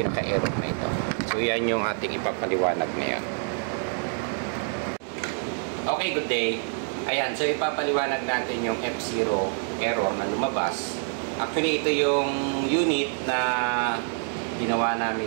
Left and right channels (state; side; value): silent; left; 61 dB below the other